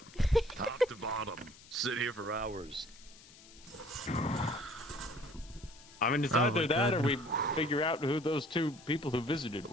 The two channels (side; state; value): left; noise; hiss, 21 dB below the sound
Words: Top to bottom. Sit here for hours. I mean, it's Oh either my that or God. we figure out who those two people who visited